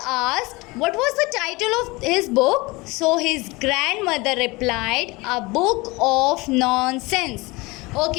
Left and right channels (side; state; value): right; quieter; 23.6 dB